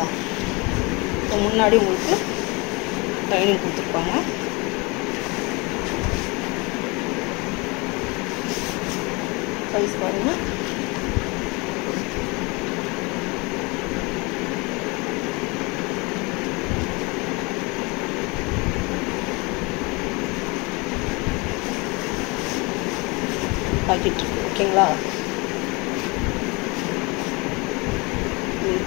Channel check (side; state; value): right; quieter; 27.0 dB